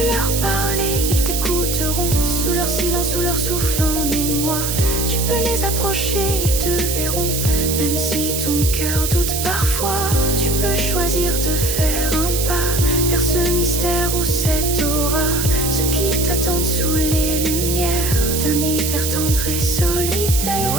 leur parler, ils t'écouteront. Sous leur silence, sous leur souffle en émoi. Tu peux les approcher, ils te verront. Même si ton cœur doute parfois, tu peux choisir de faire un pas vers ce mystère ou cette aura. Ceux qui t'attendent sous les lumières d'un hiver tendre et solitaire.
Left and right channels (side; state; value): right; noise; hiss, 2 dB below the sound